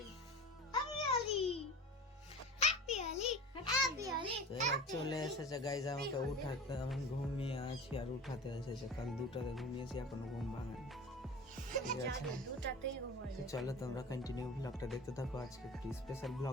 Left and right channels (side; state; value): both; normal; correlation 0.35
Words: চলে এসেছে গাইজ আমাকে উঠাতে। আমি ঘুমিয়ে আছি আর উঠাতে এসেছে। কাল 2টাতে ঘুমিয়েছি, এখনো ঘুম ভাঙেনি, ঠিক আছে। তো চলো তোমরা কন্টিনিউ ব্লগটা দেখতে থাকো। আজকে একটি স্পেশাল